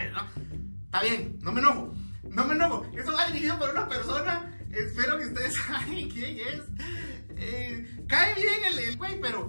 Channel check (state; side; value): inverted; both; correlation -1.00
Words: no? Está bien, no me enojo. Eso va dirigido por una persona. Espero que ustedes saben quién es. Cae bien el güey,